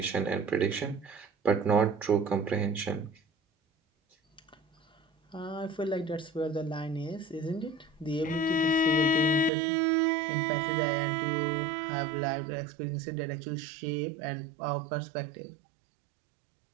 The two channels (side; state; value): left; drops out; at 9.5 s